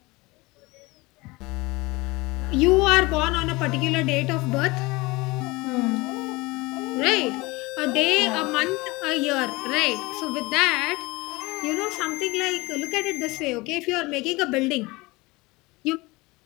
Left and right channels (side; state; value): right; quieter; 23.0 dB